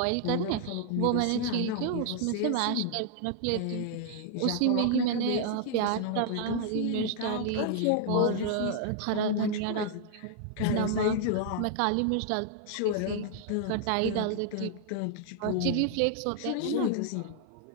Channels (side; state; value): both; different; correlation -0.01